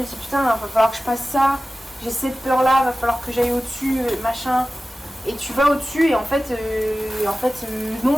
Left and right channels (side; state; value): both; normal; correlation 0.96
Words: dis, putain, il va falloir que je passe ça, j'ai cette peur-là, il va falloir que j'aille au-dessus, machin. Et tu vas au-dessus et en fait,